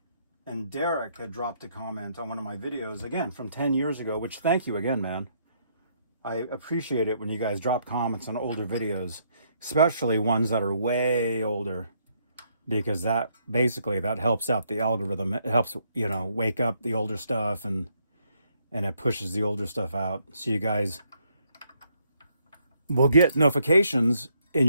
and Derek had dropped a comment on one of my videos, again, from 10 years ago, which thank you again, man. I appreciate it when you guys drop comments on older videos, especially ones that are way older, because that basically, that helps out the algorithm. It helps, you know, wake up the older stuff, and it pushes the older stuff out. So you guys will get notifications in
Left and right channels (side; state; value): both; inverted; correlation -0.72